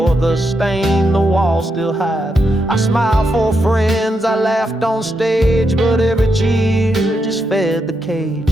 the stain the walls still hide. I smiled for friends, I laughed on stage, but every cheer just fed the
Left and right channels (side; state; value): both; normal; correlation 0.83